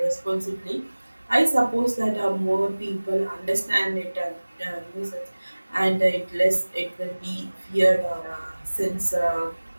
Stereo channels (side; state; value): both; inverted; correlation -1.00